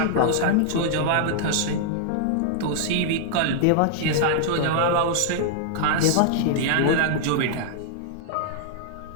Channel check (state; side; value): different; both; correlation -0.01